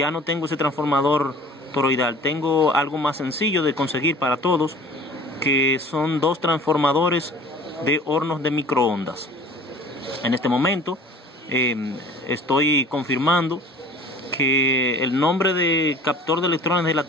no tengo ese transformador toroidal. Tengo algo más sencillo de conseguir para todos, que son dos transformadores de hornos de microondas. En este momento estoy confirmando que el nombre de captor de electrones de la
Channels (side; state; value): both; normal; correlation 0.46